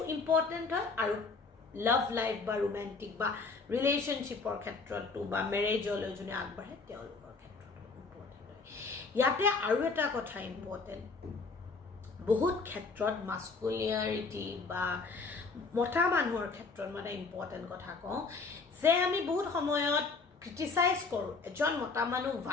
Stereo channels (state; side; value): quieter; right; 4.3 dB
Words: ইম্পৰ্টেণ্ট হয় আৰু লাভ লাইফ বা ৰোমেণ্টিক বা ৰিলেশ্যনশ্বিপৰ ক্ষেত্ৰতো বা মেৰেজলৈ যোনে আগবাঢ়ে তেওঁলোকৰ ক্ষেত্ৰতো ইম্পৰ্টেণ্ট হয় ইয়াতে আৰু এটা কথা ইম্পৰ্টেণ্ট বহুত ক্ষেত্ৰত মাস্কুলিয়াৰিটি বা মতা মানুহৰ ক্ষেত্ৰত মানে ইম্পৰ্টেণ্ট কথা কওঁ যে আমি বহুত সময়ত ক্ৰিটিচাইজ কৰোঁ এজন মতা মানুহ